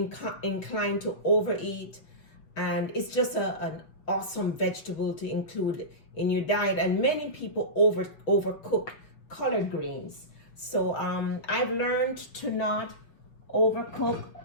to overeat, and it's just an awesome vegetable to include in your diet. And many people overcook collard greens, so I've learned to not overcook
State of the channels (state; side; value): late; right; 6.3 ms